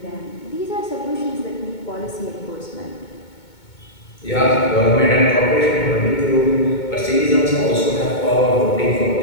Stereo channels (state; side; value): late; right; 2.2 ms